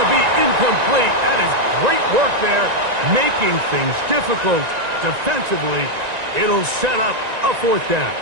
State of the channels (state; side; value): late; left; 1.9 ms